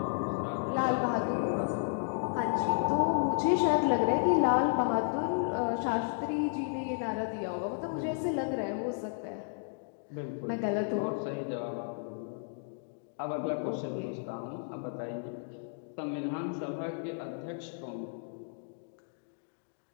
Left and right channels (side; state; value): right; silent; digital silence